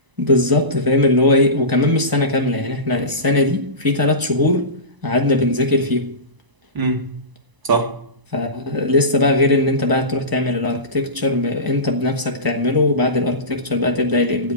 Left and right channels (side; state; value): left; late; 1.0 ms